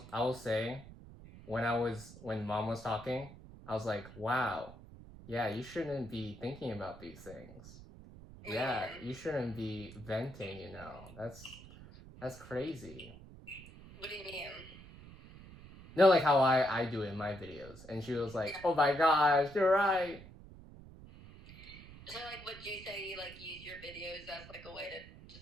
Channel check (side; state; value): right; noise; rumble, 17 dB below the sound